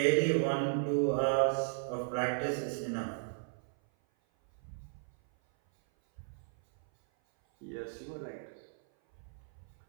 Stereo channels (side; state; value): left; silent; 55 dB below the other